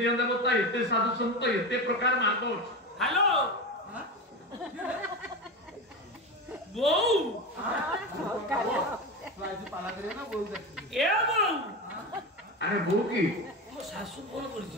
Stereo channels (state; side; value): normal; both; correlation 0.22